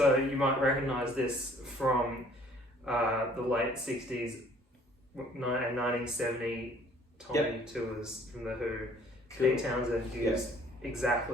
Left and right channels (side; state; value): both; normal; correlation 0.56